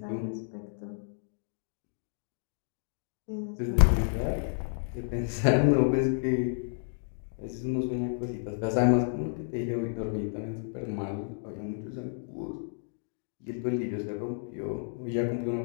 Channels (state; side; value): silent; right; digital silence